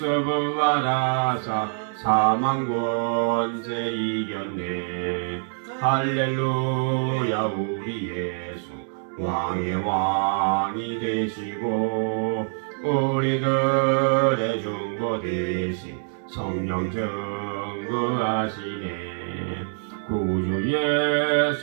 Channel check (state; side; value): silent; left; digital silence